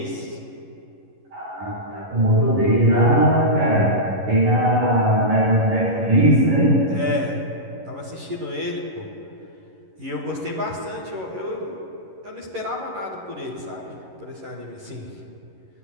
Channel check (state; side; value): late; left; 11 ms